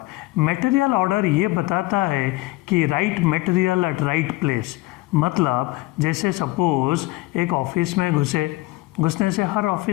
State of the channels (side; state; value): right; quieter; 19.9 dB